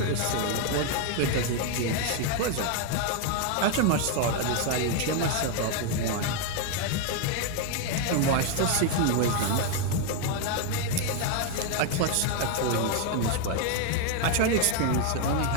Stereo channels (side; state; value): both; different; correlation 0.01